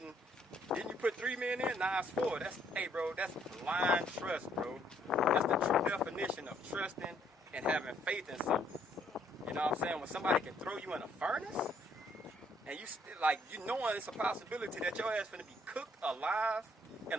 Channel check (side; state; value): both; normal; correlation 0.67